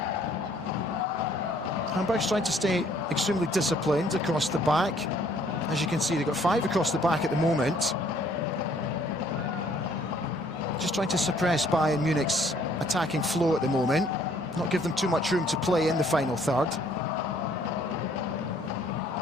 Hamburg's trying to stay extremely disciplined across the back. As you can see, they've got 5 across the back at the moment. Just trying to suppress Bayern Munich's attacking flow at the moment. Not give them too much room to play in the final third.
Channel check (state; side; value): normal; both; correlation 0.61